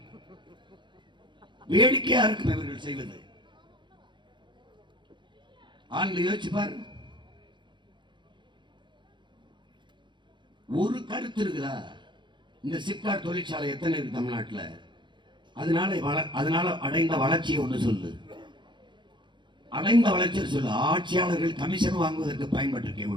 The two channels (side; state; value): left; late; 0.23 ms